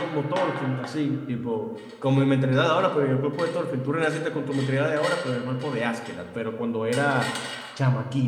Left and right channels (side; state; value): both; identical; correlation 1.00